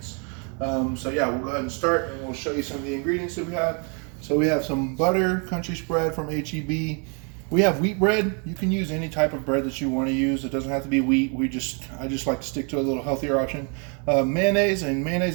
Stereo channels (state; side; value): quieter; left; 37.1 dB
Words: So yeah, we'll go ahead and start and we'll show you some of the ingredients that we have. So we have some butter, country spread from HEB. We have wheat bread. You can use any type of bread that you want to use. It doesn't have to be wheat. I just like to stick to a little healthier option. Mayonnaise, and